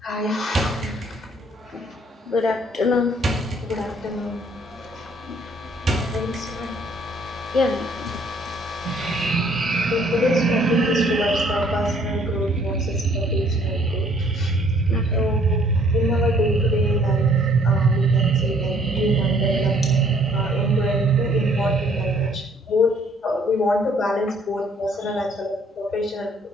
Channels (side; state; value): both; normal; correlation 0.61